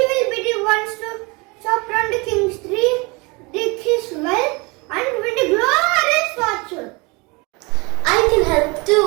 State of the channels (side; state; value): left; quieter; 27.4 dB